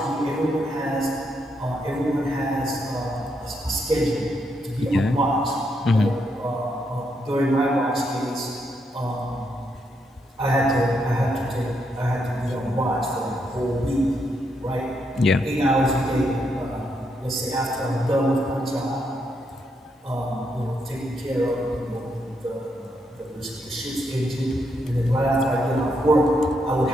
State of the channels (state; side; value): normal; both; correlation 0.79